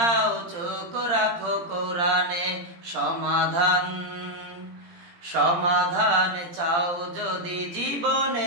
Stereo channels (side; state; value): left; late; 17 ms